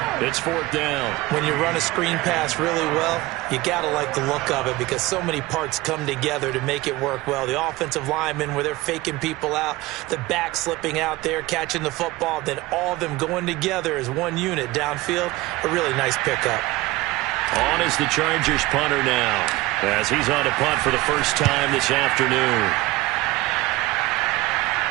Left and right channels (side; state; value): left; quieter; 19.7 dB